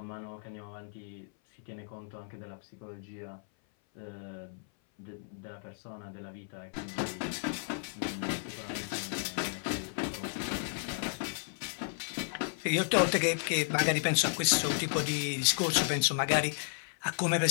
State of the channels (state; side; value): silent; right; 55 dB below the other